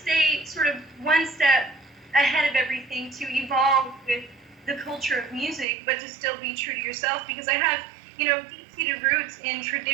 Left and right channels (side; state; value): left; drops out; at 5.7 s